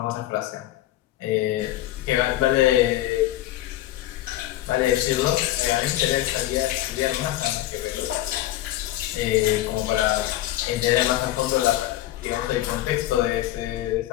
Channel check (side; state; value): right; quieter; 14.9 dB